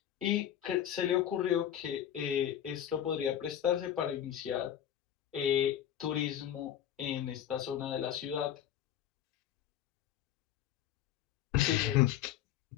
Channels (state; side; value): quieter; right; 10.7 dB